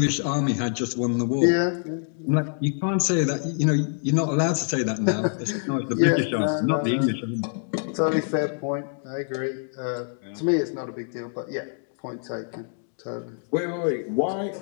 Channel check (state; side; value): silent; right; 61 dB below the other